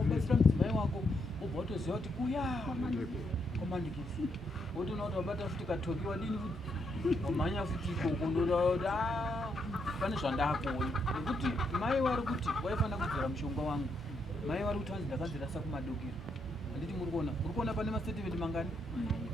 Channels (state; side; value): normal; both; correlation 0.78